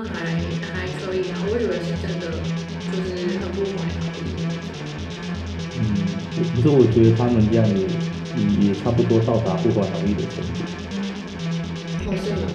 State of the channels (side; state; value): both; identical; correlation 1.00